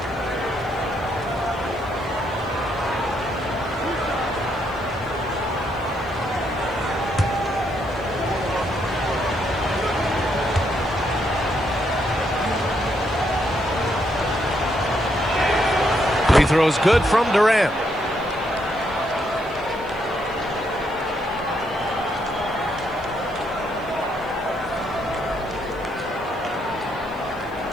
Free throws good from Durant.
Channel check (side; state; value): left; noise; hiss, 29 dB below the sound